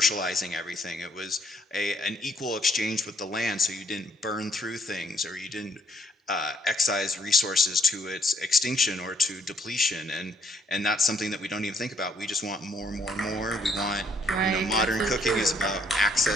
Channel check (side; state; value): both; normal; correlation 0.68